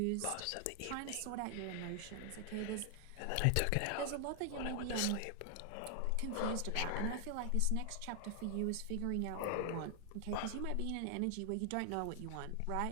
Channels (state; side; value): different; both; correlation 0.00